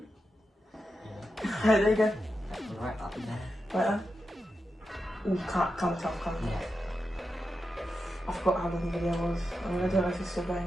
Yeah. There you go. Right up there. Right there. Ooh, can't tell. Yeah. I forgot how long the video was. I don't know if it's still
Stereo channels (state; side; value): normal; both; correlation 0.89